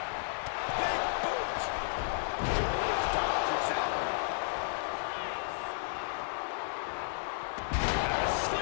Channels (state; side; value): silent; right; digital silence